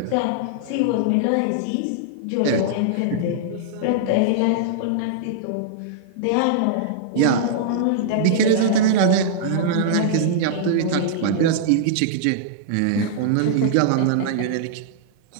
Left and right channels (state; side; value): different; both; correlation -0.02